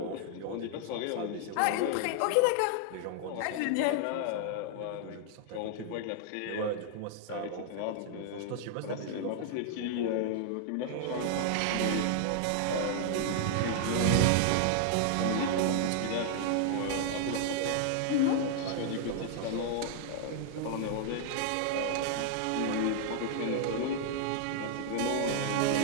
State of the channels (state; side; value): different; both; correlation -0.01